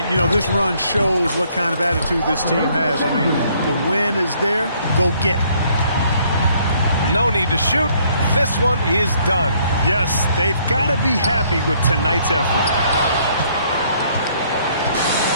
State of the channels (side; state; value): both; inverted; correlation -0.65